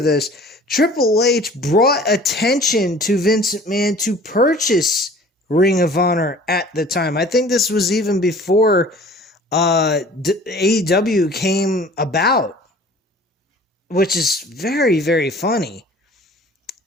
Triple H brought attention to Vince McMahon to purchase Ring of Honor at the time. I think this was even before AEW came about, which is very, very funny.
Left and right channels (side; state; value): both; normal; correlation 0.47